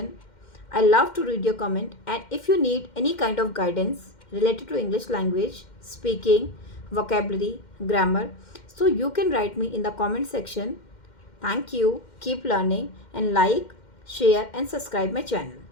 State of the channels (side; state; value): right; late; 2.1 ms